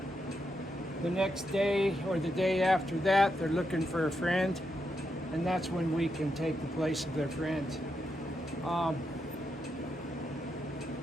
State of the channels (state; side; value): normal; both; correlation 0.83